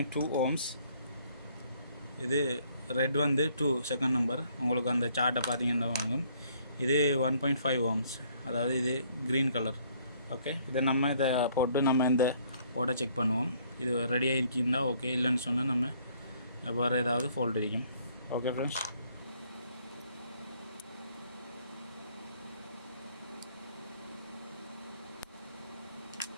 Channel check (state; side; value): inverted; both; correlation -0.63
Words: ஓம்ஸ். இது ரெட் வந்து 2 செகண்ட் நம்பர். உங்களுக்கு அந்த சார்ட்டை பார்த்தீங்கன்னா வாங்கும். இது 1.5 ஓம்ஸ், அதாவது இது க்ரீன் கலர். ஓகே, இதை நம்ம இதை போட்டு நம்ம இந்த போர்டை செக் பண்ணுவோம். இது ரெடியாக இருக்குன்னா ஓகே, இல்லைன்னு சொன்னால் நம்ம வேறு ஏதாவது ஃபால்ட் இருக்கும். ஓகே ஃப்ரெண்ட்ஸ்,